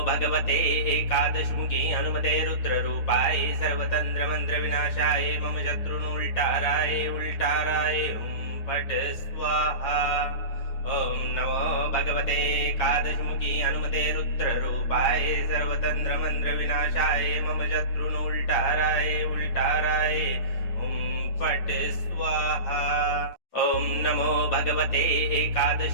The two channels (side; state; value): right; late; 9.3 ms